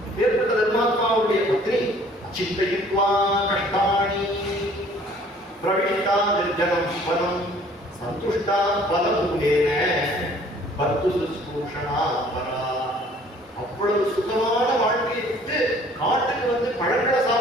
வேறுபட்ட தர்மாத்மாவுடைய பத்னி. அச்சிந்தயித்வா கஷ்டாணி பிரவிஷ்டா நிர்ஜனம் பலம் சந்துஷ்டா பலமூலேன பத்து சுஸ்ரூஷணா பரா. அவ்வளவு சுகமான வாழ்க்கையை விட்டு காட்டுக்கு வந்து பழங்களை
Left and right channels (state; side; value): normal; both; correlation 0.55